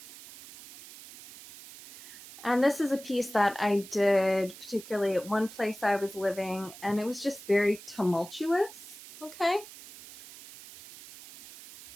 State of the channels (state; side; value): noise; right; hiss, 17 dB below the sound